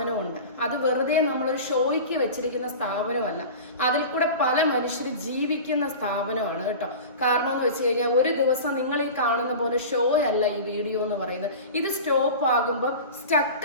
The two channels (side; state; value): both; inverted; correlation -0.33